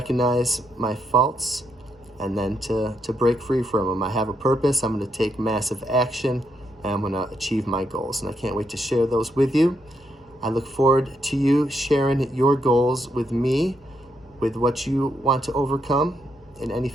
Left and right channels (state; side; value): normal; both; correlation 0.78